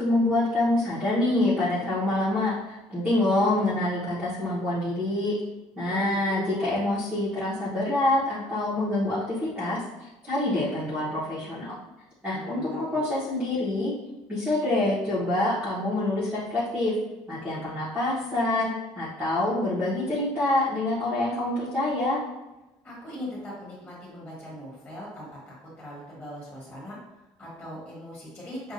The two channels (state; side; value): normal; both; correlation 0.58